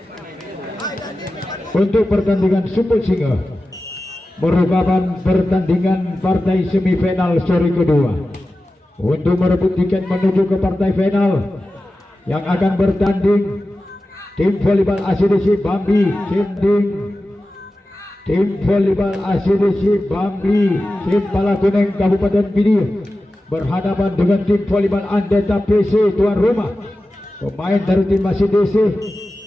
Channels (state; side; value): normal; both; correlation 0.94